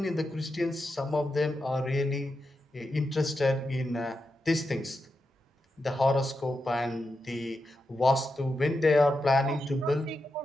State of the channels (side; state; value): both; normal; correlation 0.88